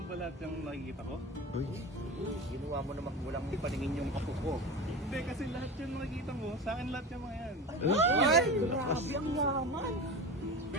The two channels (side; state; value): both; normal; correlation 0.29